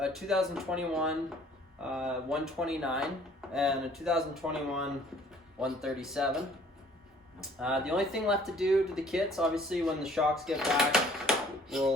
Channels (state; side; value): normal; both; correlation 0.56